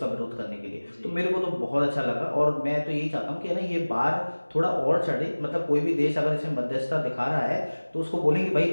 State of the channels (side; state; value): both; inverted; correlation -1.00